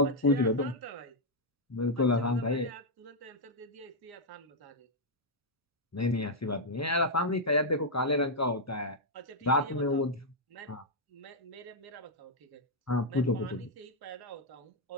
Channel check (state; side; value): normal; both; correlation -0.03